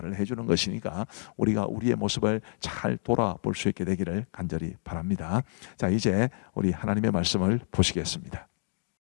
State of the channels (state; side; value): silent; right; digital silence